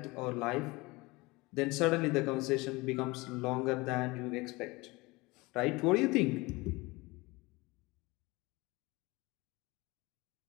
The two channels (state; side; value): quieter; right; 23.3 dB